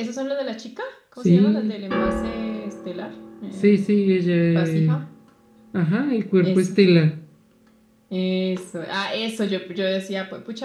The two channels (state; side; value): identical; both; correlation 1.00